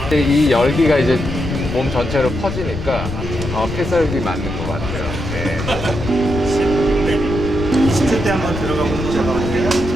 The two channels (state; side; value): noise; left; rumble, 6 dB below the sound